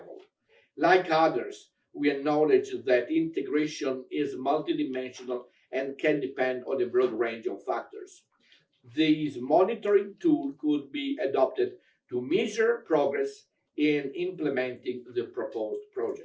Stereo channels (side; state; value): both; identical; correlation 1.00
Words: Like others, we acknowledge that integration is multidimensional and can depend on a broad range of factors. This monitoring tool could be adopted to measure progress in implementing the proposed